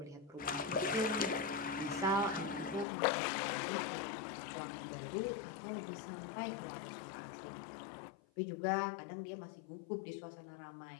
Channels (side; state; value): right; drops out; at 2.9 s